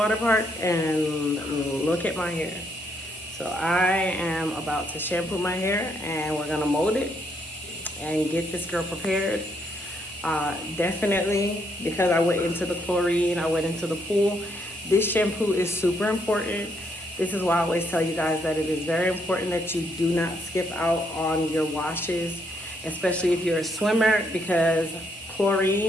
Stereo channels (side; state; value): both; normal; correlation 0.74